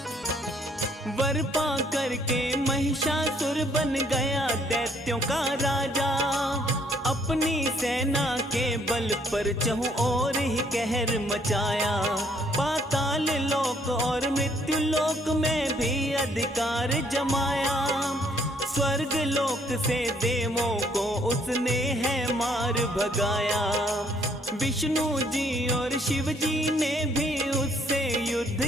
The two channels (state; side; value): normal; both; correlation 0.65